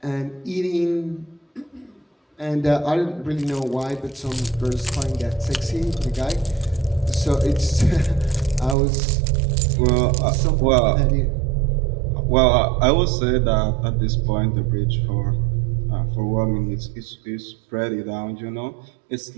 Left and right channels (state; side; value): drops out; left; at 8.8 s